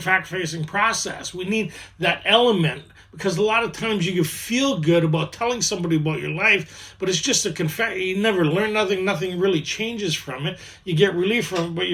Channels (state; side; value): identical; both; correlation 1.00